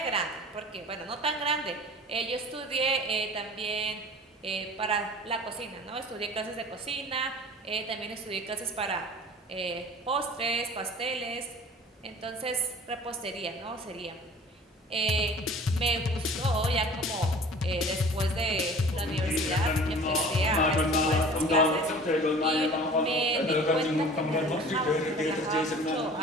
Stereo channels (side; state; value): both; normal; correlation 0.44